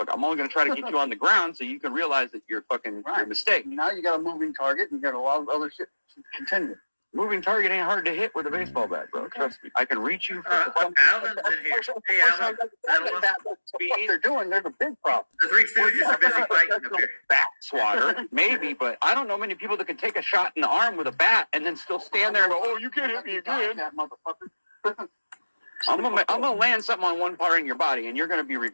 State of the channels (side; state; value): both; inverted; correlation -1.00